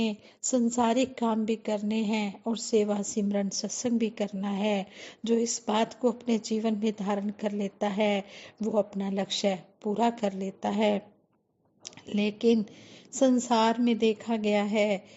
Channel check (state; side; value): identical; both; correlation 1.00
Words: संसारिक काम भी करने हैं और सेवा सिमरन सत्संग भी करना है। जो इस बात को अपने जीवन में धारण कर लेता है वो अपना लक्ष्य पूरा कर लेता है। लेकिन संसार में देखा गया है